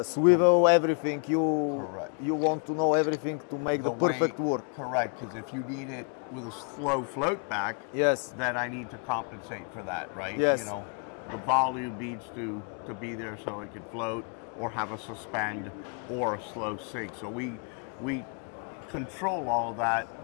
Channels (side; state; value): right; quieter; 40.0 dB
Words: swivel, everything. You want to know everything to make the perfect work. Correct, because if you need it with a slow float back, then I need to compensate for that, right? Yes. You know, the volume needs to be there so it can float, or have a suspend or a slow sink. So we control all of